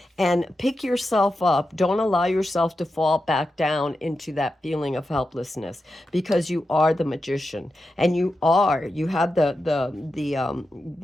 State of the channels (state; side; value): normal; both; correlation 0.89